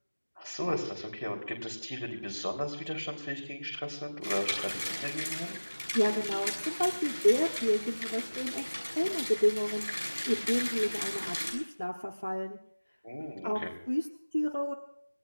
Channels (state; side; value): inverted; both; correlation -1.00